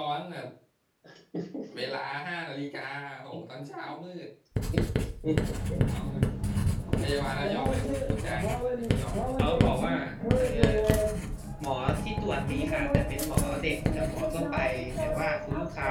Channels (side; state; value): both; identical; correlation 1.00